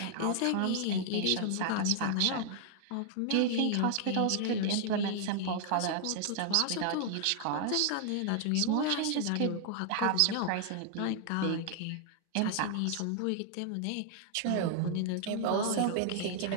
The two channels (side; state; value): both; different; correlation 0.00